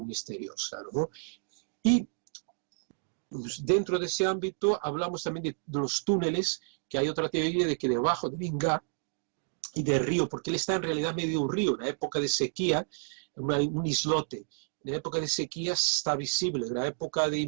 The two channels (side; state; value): left; silent; digital silence